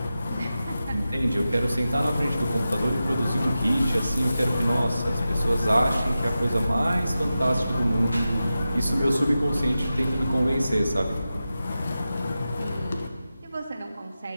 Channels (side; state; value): both; inverted; correlation -0.93